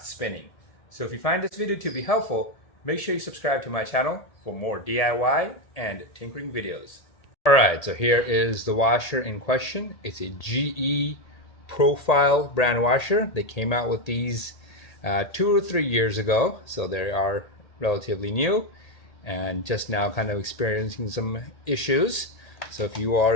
spinning. So if you find this video to be helpful, make sure you subscribe to my channel for more DIY and tinkering videos. All right, so here is the washer in question. It's a GE profile brand washer. They came out with these 2 or 3 years ago, so they are relatively new and just now kind of experiencing some issues. So if you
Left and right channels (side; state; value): right; late; 1.8 ms